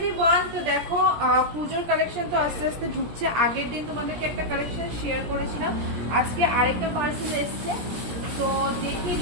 Everyone, তো দেখো পুজোর কালেকশন তো আস্তে আস্তে ঢুকছে। আগের দিন তোমাদেরকে একটা কালেকশন শেয়ার করেছিলাম, আজকে আরেকটা পার্সেল এসছে। তো দেখিয়ে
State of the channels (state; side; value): late; left; 17 ms